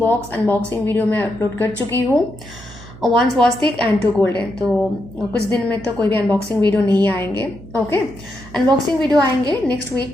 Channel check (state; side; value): noise; right; hum, 18 dB below the sound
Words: अनबॉक्सिंग वीडियो मैं अपलोड कर चुकी हूँ। 1 स्वस्तिक एंड 2 गोल्डन। तो कुछ दिन में तो कोई भी अनबॉक्सिंग वीडियो नहीं आएंगे। ओके, अनबॉक्सिंग वीडियो आएंगे नेक्स्ट